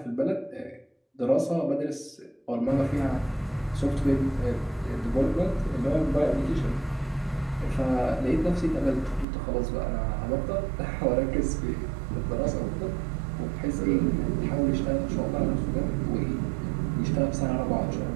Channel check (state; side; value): drops out; left; at 9.2 s